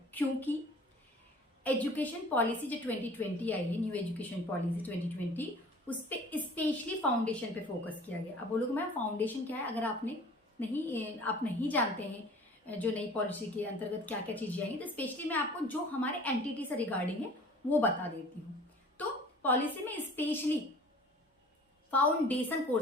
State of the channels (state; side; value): normal; both; correlation 0.46